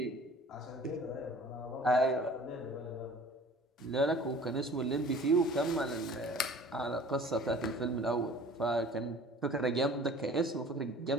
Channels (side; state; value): both; normal; correlation 0.47